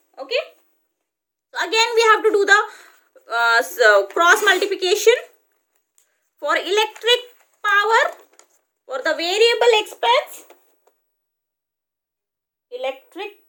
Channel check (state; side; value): identical; both; correlation 1.00